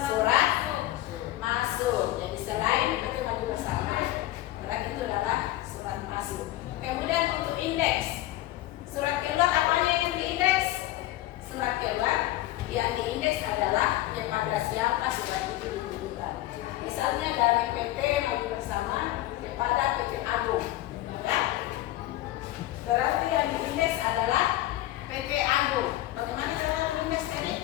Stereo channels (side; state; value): right; quieter; 15.7 dB